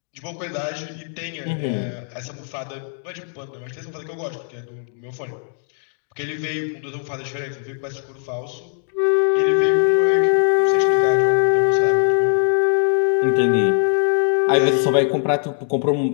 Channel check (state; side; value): silent; right; digital silence